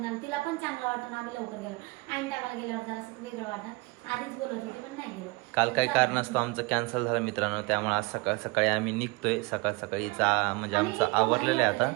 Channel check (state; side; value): quieter; left; 25.7 dB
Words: तिला पण चांगलं वाटतं ना आम्ही लवकर गेलो. आणि टायमाला गेल्यावर जरा असं वेगळं वाटतं. आधीच बोलत होते पण नाही गेलो. काल काही कारण असतं आमचं कॅन्सल झालं मित्रांनो, त्यामुळे आज सकाळी आम्ही निघतोय. सकाळीचा म्हणजे आमचं आवरलेलं आहे आता.